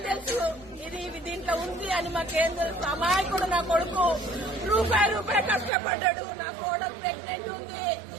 తెలుసు ఇది దీంట్లో ఉంది అని మాకేం తెలుసు అమాయకుడు నా కొడుకు రూపాయి కష్టపడ్డాడు నా కోడలు ప్రెగ్నెంట్ ఉంది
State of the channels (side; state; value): left; drops out; at 5.7 s